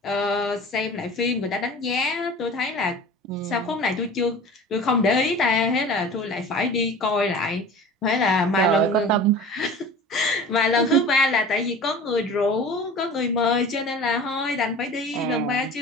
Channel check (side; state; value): both; normal; correlation 0.39